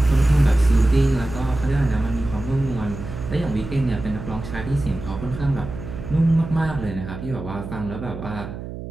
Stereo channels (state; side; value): noise; right; hum, 10 dB below the sound